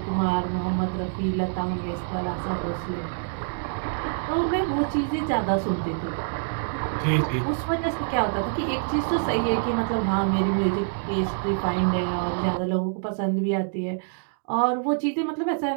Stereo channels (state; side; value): silent; left; digital silence